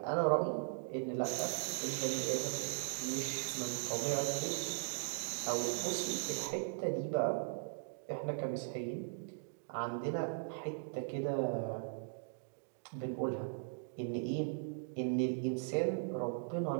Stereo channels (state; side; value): silent; left; digital silence